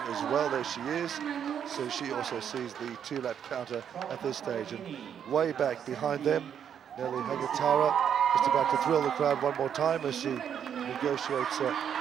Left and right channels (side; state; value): left; quieter; 8.5 dB